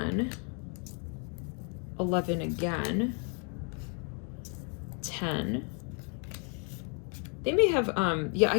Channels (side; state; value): right; quieter; 39.1 dB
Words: 11 again, 10. They may have, yeah,